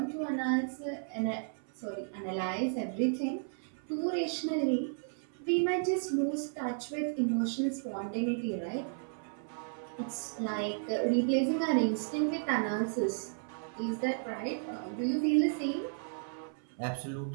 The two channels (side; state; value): left; silent; 55 dB below the other